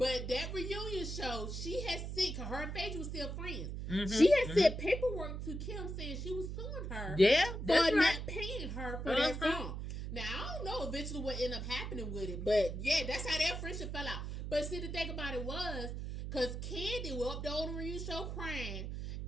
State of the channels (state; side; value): noise; right; hum, 5 dB below the sound